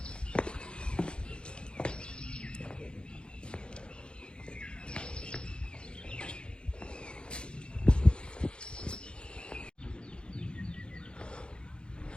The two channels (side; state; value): right; late; 0.054 ms